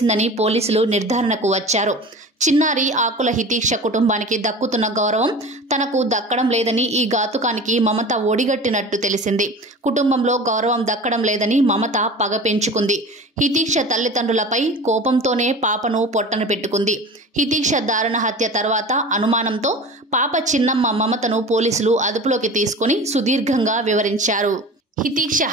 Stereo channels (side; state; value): both; normal; correlation 0.36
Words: పోలీసులు నిర్ధారణకు వచ్చారు. చిన్నారి ఆకుల హితీక్ష కుటుంబానికి దక్కుతున్న గౌరవం తనకు దక్కడం లేదని ఈ ఘాతుకానికి మమత ఒడిగట్టినట్టు తెలిసింది. కుటుంబంలో గౌరవం దక్కడం లేదని మమత పగ పెంచుకుంది. హితీక్ష తల్లిదండ్రులపై కోపంతోనే పాపను పొట్టన పెట్టుకుంది. హితీక్ష దారుణ హత్య తర్వాత అనుమానంతో పాప చిన్నమ్మ మమతను పోలీసులు అదుపులోకి తీసుకుని సుదీర్ఘంగా వివరించారు. హితీక్ష